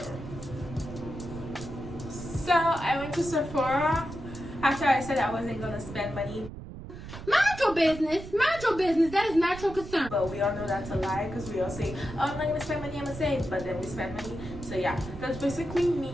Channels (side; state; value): right; noise; rumble, 12 dB below the sound